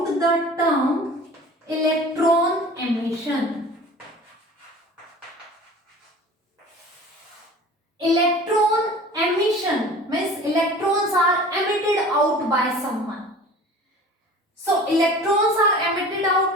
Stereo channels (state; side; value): normal; both; correlation 0.42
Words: the term electron emission. Electron emission means electrons are emitted out by someone. So electrons are emitted